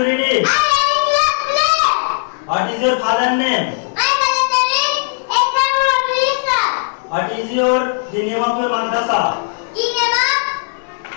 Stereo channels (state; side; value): silent; right; 68 dB below the other